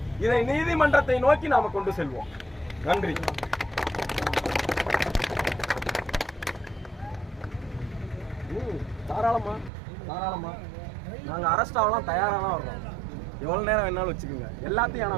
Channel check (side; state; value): left; drops out; at 9.7 s